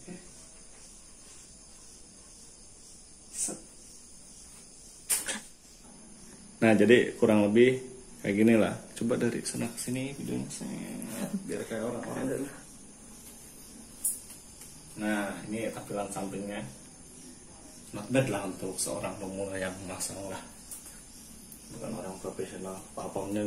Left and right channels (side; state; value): both; identical; correlation 1.00